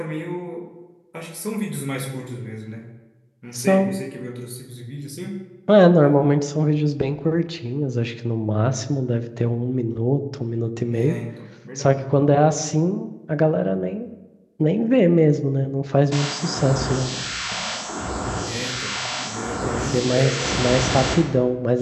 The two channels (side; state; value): both; identical; correlation 1.00